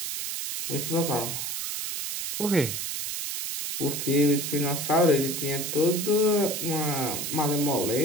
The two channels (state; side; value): noise; right; hiss, 4 dB below the sound